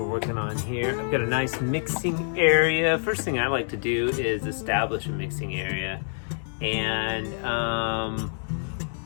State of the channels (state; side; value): silent; right; digital silence